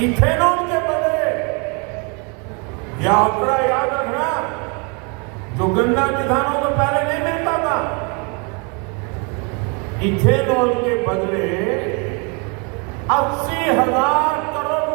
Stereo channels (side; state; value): left; quieter; 33.6 dB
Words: इथेनॉल के बदले, यह आंकड़ा याद रखना, जो गन्ना किसानों को पहले नहीं मिलता था, इथेनॉल के बदले 80,000 करोड़